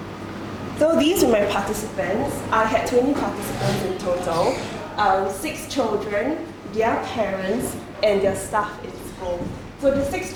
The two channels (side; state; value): both; identical; correlation 1.00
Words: So these were my participants. I had 20 participants in total, 6 children, their parents, and their staff in school. So the 6